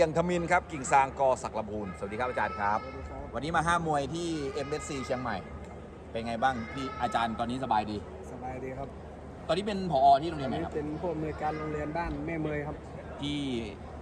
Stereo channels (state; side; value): identical; both; correlation 1.00